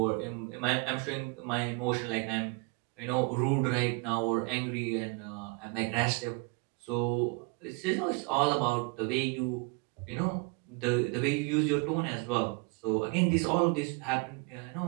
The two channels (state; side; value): quieter; left; 31.6 dB